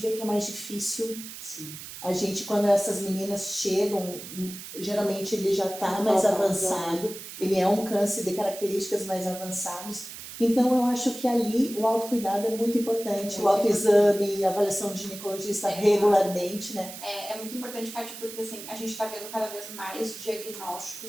que é mais difícil. Sim. A gente, quando essas meninas chegam, geralmente ele já está mais avançado, ele é um câncer de características mais avançadas. Então, eu acho que ali o autocuidado é muito importante, o autoexame, a avaliação de ginecologista regularmente, né? É muito importante, Kátia, porque assim, a gente está vendo cada vez mais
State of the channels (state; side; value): noise; right; hiss, 12 dB below the sound